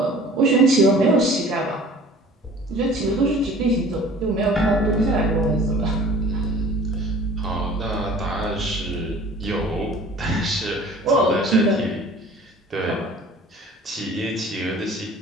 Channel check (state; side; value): normal; both; correlation 0.47